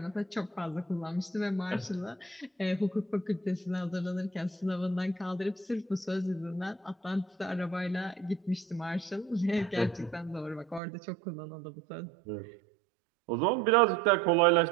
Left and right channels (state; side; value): drops out; left; at 10.8 s